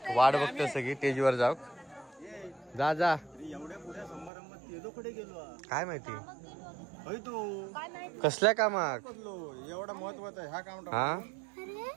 वाट बघतो सगळी स्टेजवर जाऊ. जा जा काय माहिती कसल्या कामाक एवढा महत्वाचा आहे हा काम. हा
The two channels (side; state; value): left; drops out; at 4.3 s